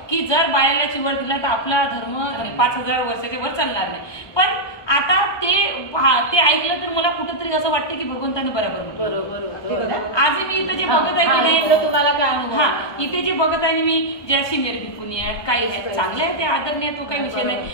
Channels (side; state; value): right; late; 1.2 ms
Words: की जर बायाला चिवर दिला तर आपला धर्म 5000 वर्षाच्या वर चालणार नाही. पण आता ते ते ऐकलं तर मला कुठंतरी असं वाटतं की भगवंताने बरोबर म्हटलं. बरोबर. आजही मी इथं जे बघत आहे की नाही, इथलं तुम्हाला काय अनुभव हा आला? इथे जे बघत आहे मी ज्या सिनियर भिकुनी आहेत काही आहेत चांगले आहे, ते आदरणीय, तो काही विषय नाही.